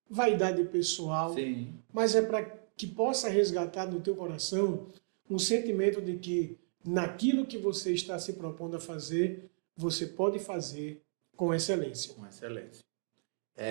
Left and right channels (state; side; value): silent; left; digital silence